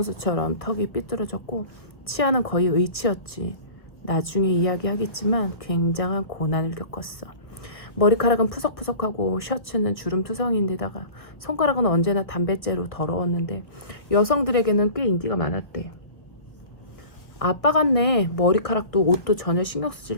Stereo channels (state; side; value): late; right; 1.2 ms